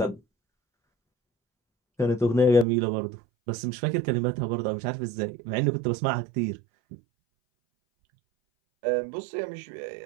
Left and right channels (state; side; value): drops out; left; at 2.7 s